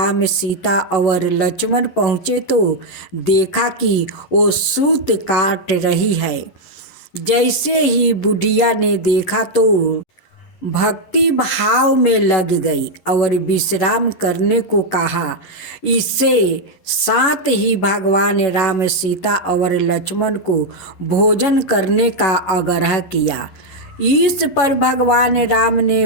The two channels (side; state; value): right; late; 11 ms